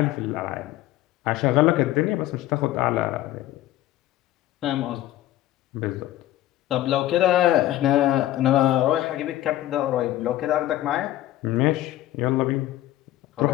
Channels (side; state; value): right; quieter; 14.5 dB